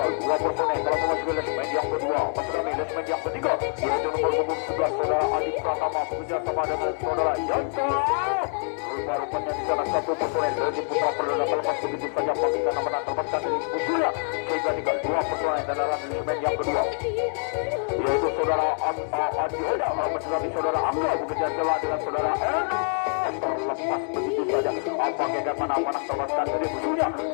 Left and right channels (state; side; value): silent; right; 57 dB below the other